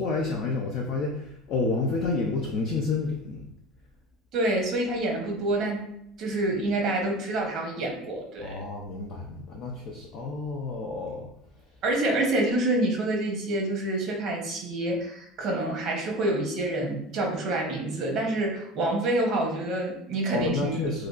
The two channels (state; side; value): normal; both; correlation 0.32